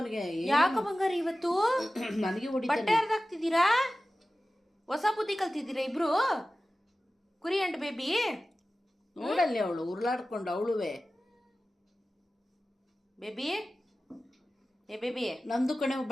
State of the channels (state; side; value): normal; both; correlation 0.95